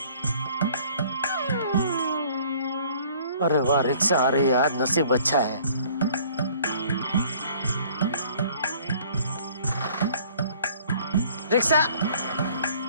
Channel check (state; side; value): inverted; both; correlation -0.55